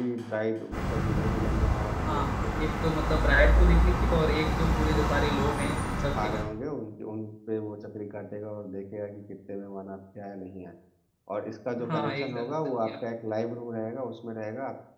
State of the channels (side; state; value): both; identical; correlation 1.00